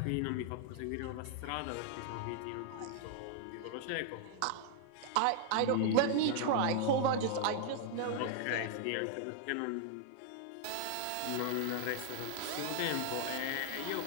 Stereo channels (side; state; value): both; different; correlation 0.00